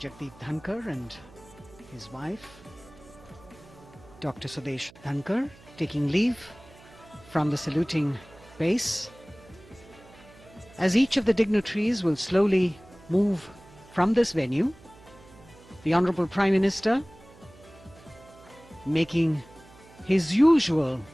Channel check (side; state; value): right; noise; hum, 23 dB below the sound